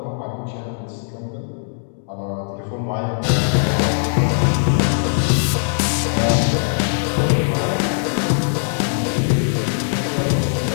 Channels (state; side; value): silent; right; digital silence